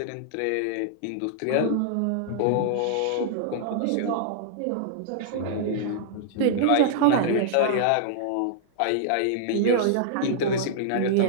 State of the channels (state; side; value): different; both; correlation -0.01